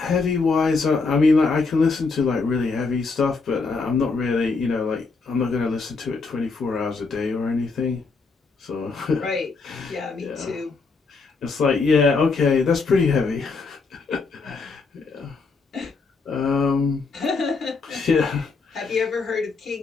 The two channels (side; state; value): right; quieter; 4.3 dB